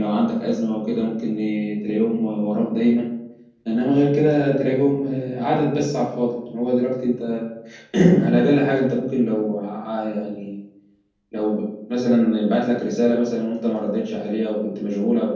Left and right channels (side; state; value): both; identical; correlation 1.00